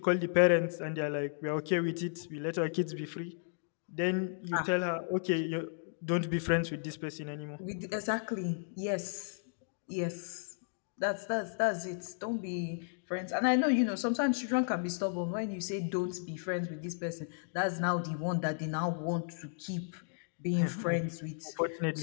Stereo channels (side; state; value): right; silent; digital silence